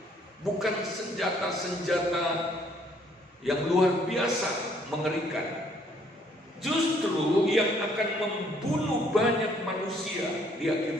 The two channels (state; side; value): normal; both; correlation 0.64